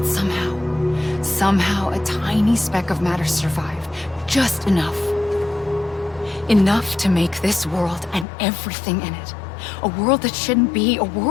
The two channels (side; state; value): right; drops out; at 8.2 s